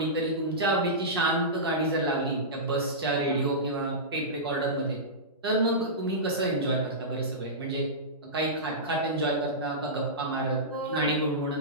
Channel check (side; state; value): both; normal; correlation -0.17